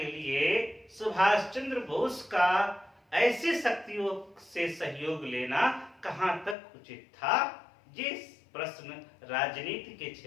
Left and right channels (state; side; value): drops out; right; at 6.6 s